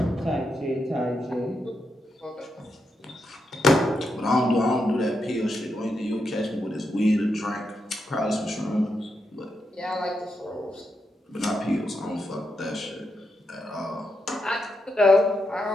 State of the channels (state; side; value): normal; both; correlation 0.84